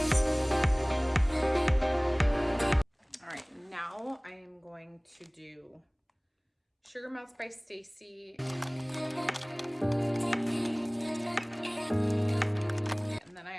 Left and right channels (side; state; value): both; identical; correlation 1.00